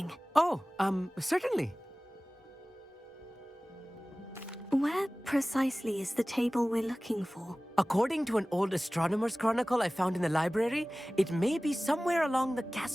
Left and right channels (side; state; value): both; normal; correlation 0.98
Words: Oh, certainly. Where precisely is the table we're looking for? According to an old astronomer's chronicle I found in the library, it may be somewhere along the